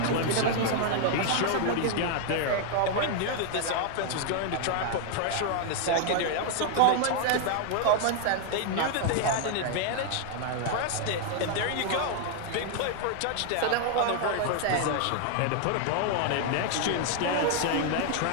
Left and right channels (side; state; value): both; different; correlation 0.00